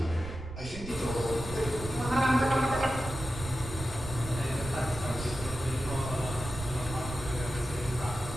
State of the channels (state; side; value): noise; right; rumble, 10 dB below the sound